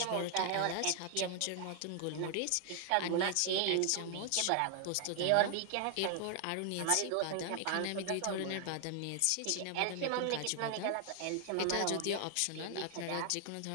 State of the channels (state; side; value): different; both; correlation 0.00